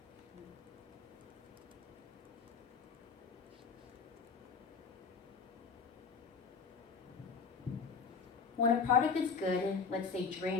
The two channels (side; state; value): right; quieter; 5.4 dB